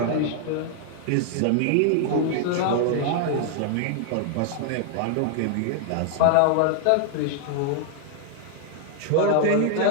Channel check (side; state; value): both; different; correlation 0.00